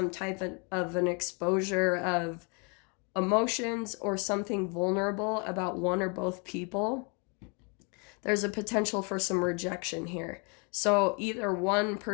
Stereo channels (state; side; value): quieter; right; 34.1 dB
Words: type of an exposure of emotions or something vulnerable about one or both people, there's a potential for some rejection here. So either one